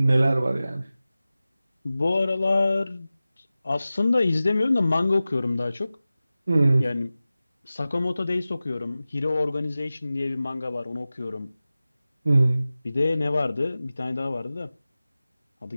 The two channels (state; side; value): inverted; both; correlation -0.96